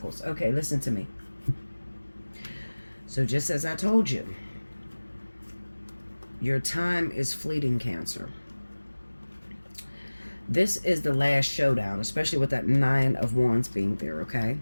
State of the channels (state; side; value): inverted; both; correlation -1.00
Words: Okay, listen to me. So just as I told you, your time is fleeting, Cancer. This is the last showdown, especially with that Nine of Wands being there, okay?